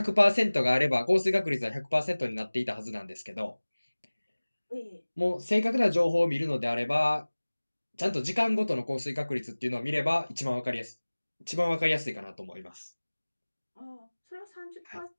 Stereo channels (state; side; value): inverted; both; correlation -1.00